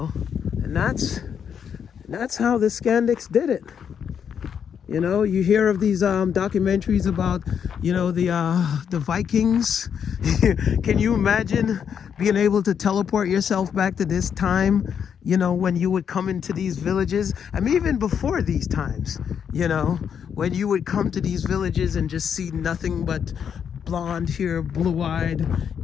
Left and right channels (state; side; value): quieter; right; 7.8 dB